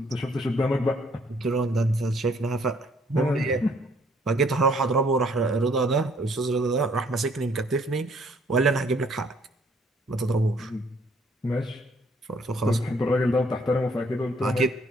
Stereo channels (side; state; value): both; normal; correlation 0.63